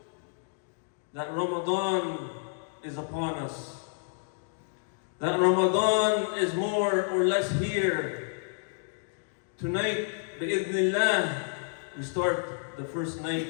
that Ramadan is upon us. That Ramadan is more or less here. Tonight, bi'idhnillah, we start the first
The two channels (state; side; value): silent; right; digital silence